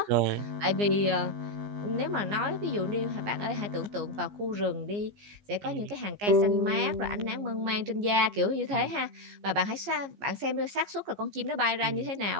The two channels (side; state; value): left; late; 15 ms